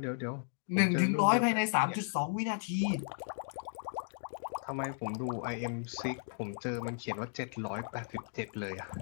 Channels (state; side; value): silent; right; digital silence